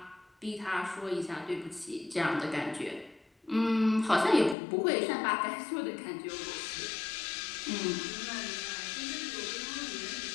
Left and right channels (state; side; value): drops out; right; at 4.5 s